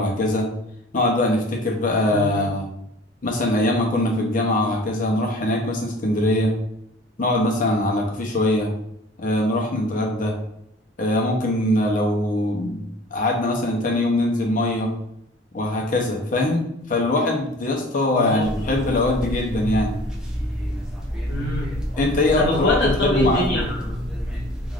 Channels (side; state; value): both; normal; correlation 0.46